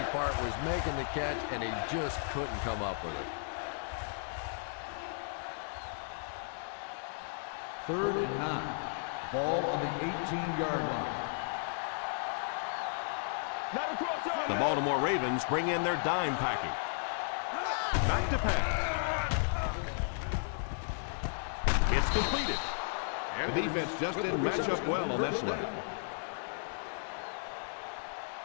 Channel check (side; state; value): right; silent; digital silence